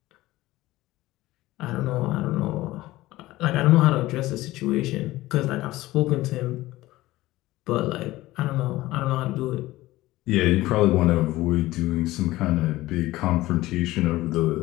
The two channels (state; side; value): quieter; right; 17.5 dB